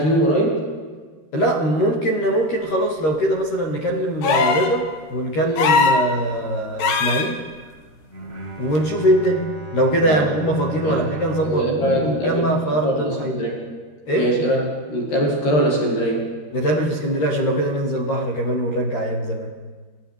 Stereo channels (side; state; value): right; late; 13 ms